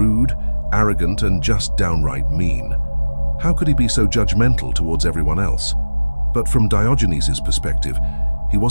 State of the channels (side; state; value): both; inverted; correlation -1.00